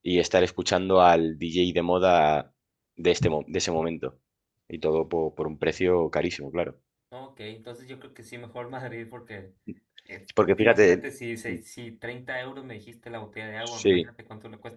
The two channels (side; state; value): both; identical; correlation 1.00